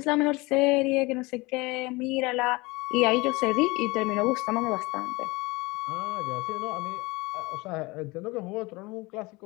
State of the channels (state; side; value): quieter; right; 23.9 dB